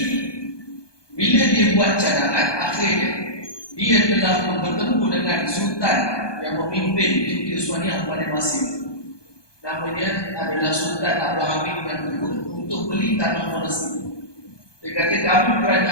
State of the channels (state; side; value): late; right; 1.2 ms